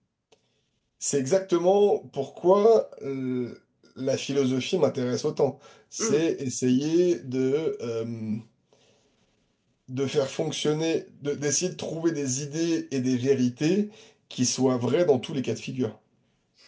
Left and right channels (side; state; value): both; identical; correlation 1.00